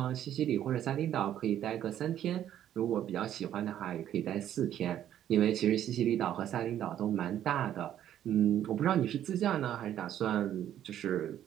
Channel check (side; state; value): left; quieter; 11.1 dB